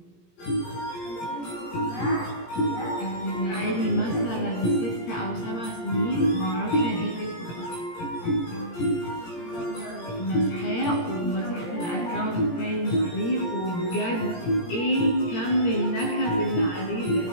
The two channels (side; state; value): right; late; 17 ms